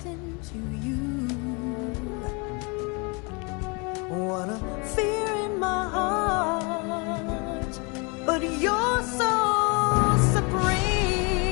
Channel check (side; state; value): right; quieter; 31.0 dB